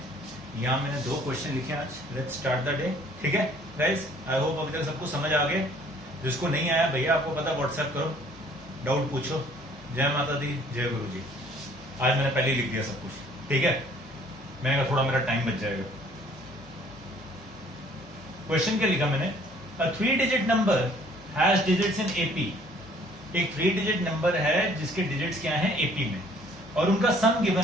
यहाँ मैंने 2 क्वेश्चन लिखे आज। लेट्स स्टार्ट द डे, ठीक है गाइस। आई होप अभी तक सबको समझ आ गए। जिसको नहीं आया भैया आपको पता, व्हाट्सएप करो, डाउट पूछो। जय माता दी, जय गुरु जी। आज मैंने पहले ही लिख दिया सब कुछ, ठीक है। मैंने कहा थोड़ा मेरा टाइम बच जाएगा। क्वेश्चन क्या लिखा मैंने, अ 3 digit number has digits in AP. एक 3 डिजिट नंबर है जिसके डिजिट्स क्या हैं एपी में, और उनका सम गिवन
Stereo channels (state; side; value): normal; both; correlation 0.58